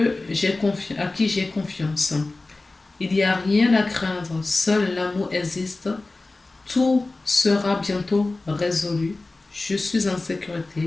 à qui j'ai confiance. Il n'y a rien à craindre, seul l'amour existe. Tout sera bientôt résolu. Je suis en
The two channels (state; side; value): quieter; right; 3.2 dB